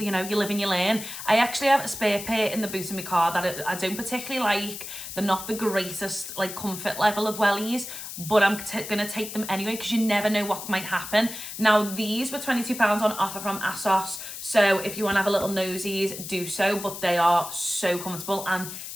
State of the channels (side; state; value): left; noise; hiss, 9 dB below the sound